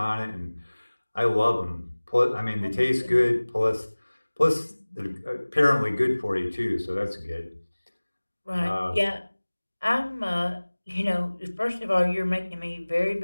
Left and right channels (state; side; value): inverted; both; correlation -1.00